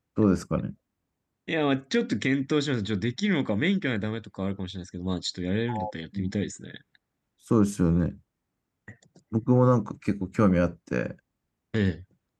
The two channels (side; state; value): both; identical; correlation 1.00